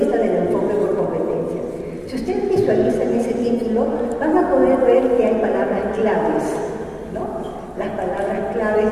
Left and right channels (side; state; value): both; identical; correlation 1.00